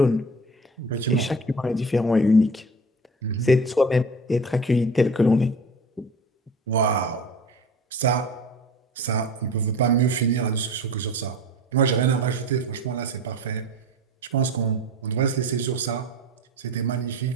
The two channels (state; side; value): normal; both; correlation 0.37